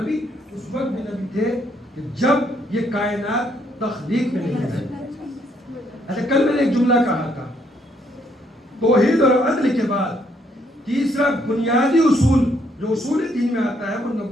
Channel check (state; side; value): normal; both; correlation 0.71